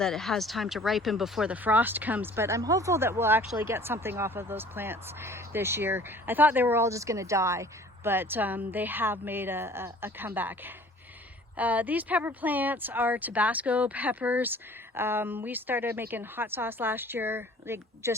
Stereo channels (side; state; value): both; normal; correlation 0.49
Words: it has time to ripen before the frost comes, but I'm hopeful that we'll actually get something off of those plants this year. I thought they were all just going to die, but they have made a comeback. These pepper plants are Tabasco peppers. We started making hot sauce last year, like